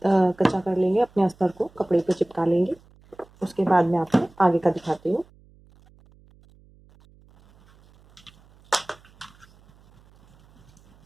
कर लेंगे, अपने अस्तर को कपड़े पर चिपका लेंगे। उसके बाद मैं आपको आगे का दिखाती हूँ।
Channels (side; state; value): right; noise; hum, 29 dB below the sound